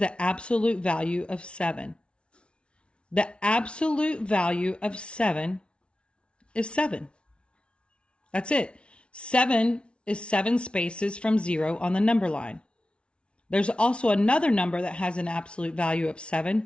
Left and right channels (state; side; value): late; right; 0.058 ms